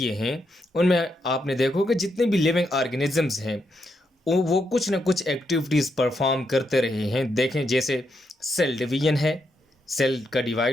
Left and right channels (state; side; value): normal; both; correlation 0.81